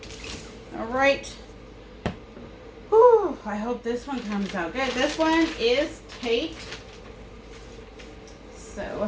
All right. Whew, I hope this one comes out good. This one is taped.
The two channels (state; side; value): identical; both; correlation 1.00